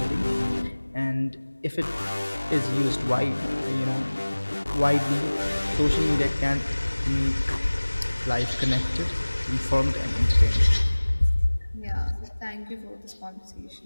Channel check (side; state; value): both; inverted; correlation -1.00